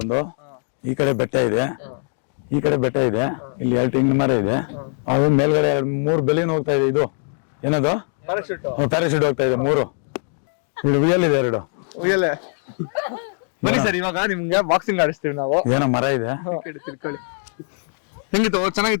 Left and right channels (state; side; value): silent; right; 57 dB below the other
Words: ಈ ಕಡೆ ಬೆಟ್ಟ ಇದೆ, ಈ ಕಡೆ ಬೆಟ್ಟ ಇದೆ, ಇಲ್ಲಿ 2 ತೆಂಗಿನ ಮರ ಇದೆ. ಅದು ಮೇಲ್ಗಡೆ 3 ಬೆಲಿನ ಹೋಗ್ತಾ ಇದೆ. ಇದು ಏನದು? ಪ್ಯಾರಾಶೂಟ್ ಹೋಗ್ತಾ ಇದೆ 3. ಇಲ್ಲಿ ಉಯ್ಯಲ್ ಇದೆ 2. ಉಯ್ಯಲೆ. ಬನ್ನಿ ಸರ್, ಇವಾಗ ನಿಮ್ಗೆ ಬಾಕ್ಸಿಂಗ್ ಆಡಿಸ್ತೀವಿ ನಾವು. ಏನೋ ಮರ ಇದೆ. ತಿಳ್ಕೊಳ್ಳಿ. ಹೆಂಗಿತ್ತು?